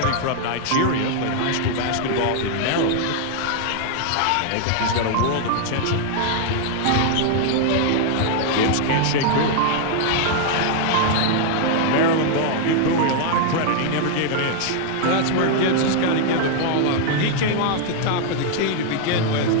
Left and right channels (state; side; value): different; both; correlation 0.00